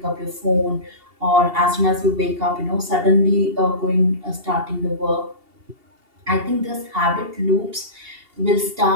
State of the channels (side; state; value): left; late; 2.8 ms